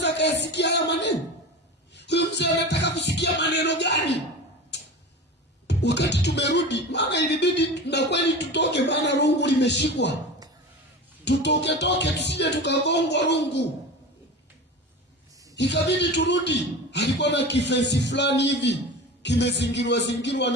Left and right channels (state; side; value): normal; both; correlation 0.31